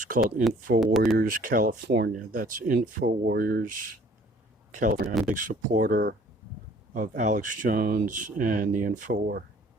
called Info Warriors California. That's Info Warriors California. I'm a big supporter of Alex Jones and the InfoWar,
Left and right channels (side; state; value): both; normal; correlation 0.55